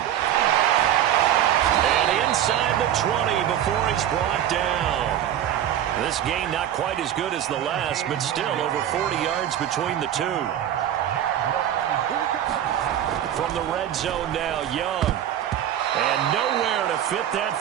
And inside the 20 before he's brought down. This game not quite as good as the last, but still over 40 yards between the two. From the red zone now, Young. And nowhere to fit that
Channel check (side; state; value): left; quieter; 10.9 dB